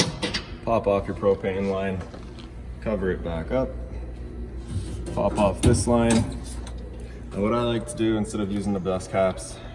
pop off your propane line, cover it back up, pop off this line. And what I like to do, instead of using the dust caps,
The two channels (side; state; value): both; identical; correlation 1.00